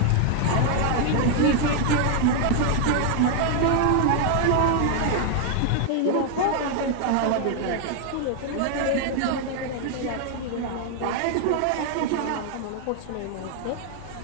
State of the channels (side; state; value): both; different; correlation 0.00